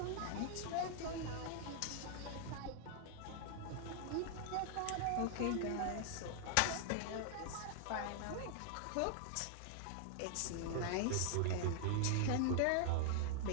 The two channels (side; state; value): both; different; correlation 0.00